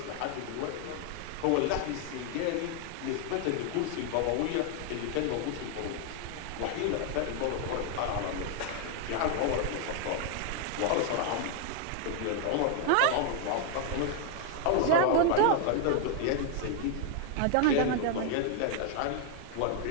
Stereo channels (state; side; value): different; both; correlation 0.00